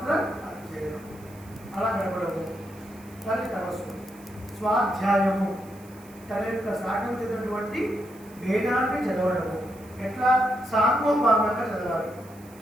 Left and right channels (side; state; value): right; noise; hiss, 24 dB below the sound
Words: అధ్యయనం, అలా గడపడము. కానీ తపస్సు స్వాధ్యాయము, తన యొక్క సాగతినటువంటి వేదాన్ని చదవడము. ఎట్లా? సాంగోపాంగంగా చదవాలి.